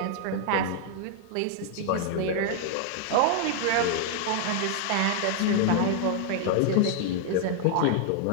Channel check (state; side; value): different; both; correlation 0.00